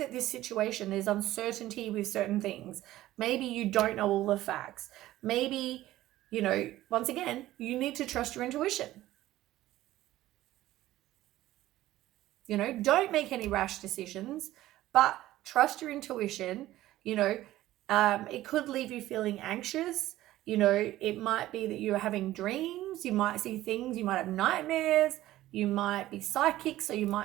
this situation, there's uncertainty with certain things. Maybe you don't know all the facts. Maybe, once again, you need to trust your intuition. Don't make any rash decisions, but trust your intuition. It could leave you feeling anxious. It might be that you're having dreams. You might see things. You might have nightmares. You might be psychic, so you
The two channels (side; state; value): left; quieter; 15.3 dB